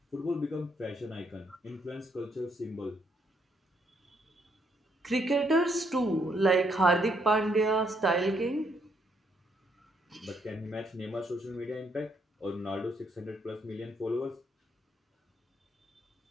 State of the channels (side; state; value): both; normal; correlation 0.73